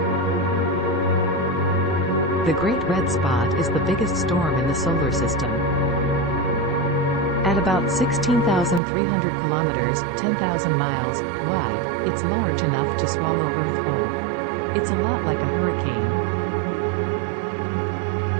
The Great Red Spot is the biggest storm in the solar system. At about 16,300 kilometers, 10,000 miles, wide, it's large enough to swallow Earth whole. It's a lot like a hurricane.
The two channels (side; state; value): left; drops out; at 8.8 s